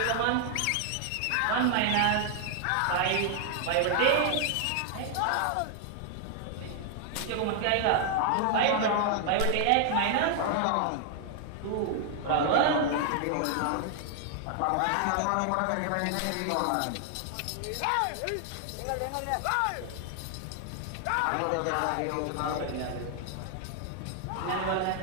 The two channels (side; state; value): both; different; correlation 0.00